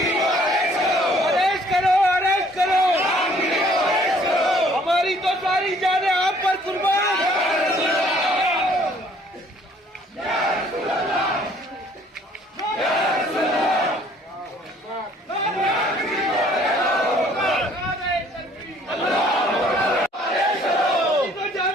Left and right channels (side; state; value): both; normal; correlation 0.59